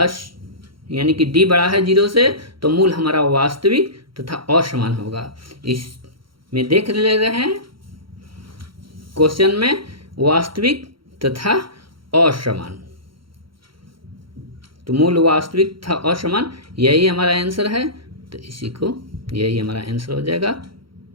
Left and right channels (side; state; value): left; late; 0.73 ms